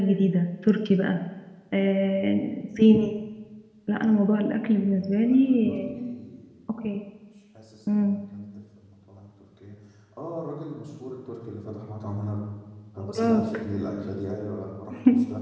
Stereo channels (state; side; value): identical; both; correlation 1.00